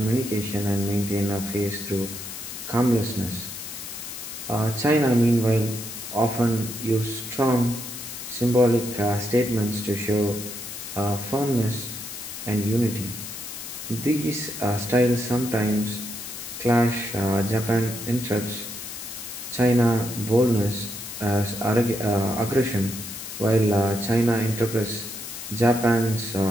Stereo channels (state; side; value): noise; left; hiss, 9 dB below the sound